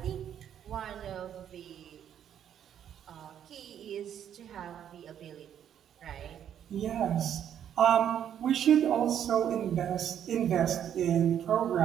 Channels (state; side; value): quieter; left; 9.6 dB